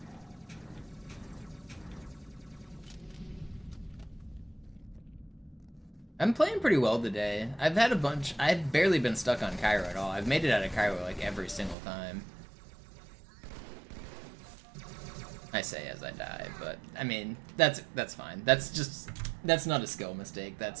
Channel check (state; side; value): drops out; left; at 11.8 s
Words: I'm playing pretty well today. I've had a bunch. I've barely been stuck on Cairo at all. I've made it out of Cairo like every single time. I say as I die, but I mean that's fine. That's not a skill mistake.